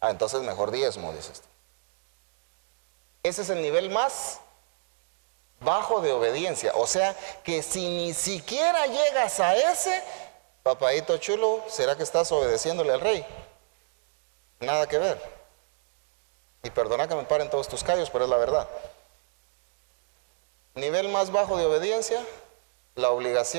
Entonces mejor diezmo, dices tú. Ese es el nivel más bajo de obediencia. O sea que si ni siquiera llegas a ese, papadito chulo, ¿será que estás obedeciéndole al rey? Nada que ver. Y perdona que me paren todos tus callos, pero es la verdad. Nivel más bajo de obediencia, la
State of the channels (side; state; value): left; silent; 59 dB below the other